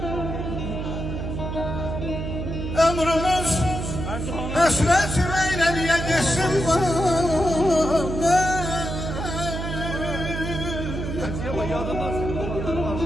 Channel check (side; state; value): right; noise; hum, 4 dB below the sound